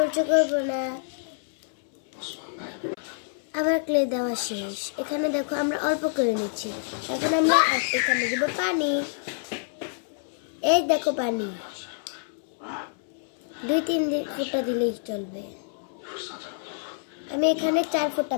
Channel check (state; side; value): silent; right; 60 dB below the other